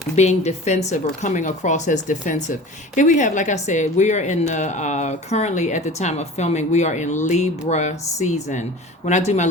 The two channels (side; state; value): both; normal; correlation 0.38